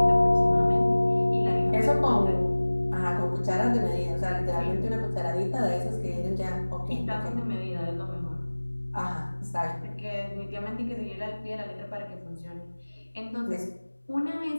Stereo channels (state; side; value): inverted; both; correlation -1.00